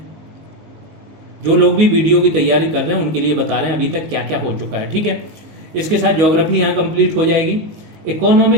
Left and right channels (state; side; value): late; left; 19 ms